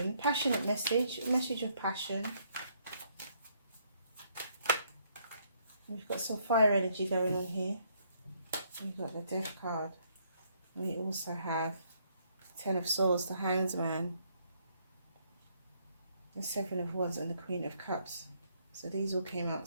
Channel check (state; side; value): inverted; both; correlation -0.70